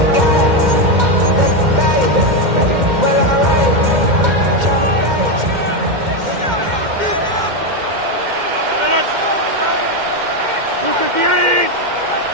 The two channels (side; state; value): left; late; 2.1 ms